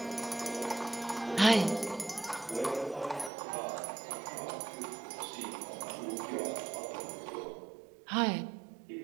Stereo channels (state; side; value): drops out; left; at 3.3 s